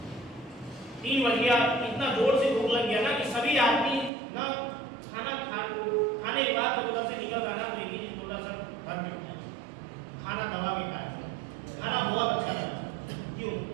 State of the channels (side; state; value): left; drops out; at 4.1 s